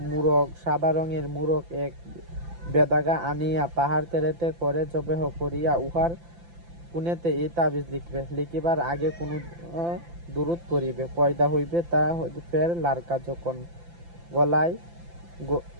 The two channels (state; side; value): late; left; 5.9 ms